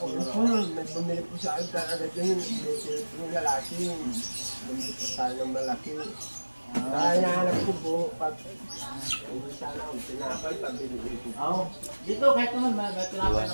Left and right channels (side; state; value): both; inverted; correlation -1.00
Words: May bumili po sa akin talaga yun. Yung lalaki. Bumili po tayo ng malaki. Kaya nahanap ko po. Hindi sana akong tinapay. Pabili ko. Oo. Dito, kahit naman, may tinapay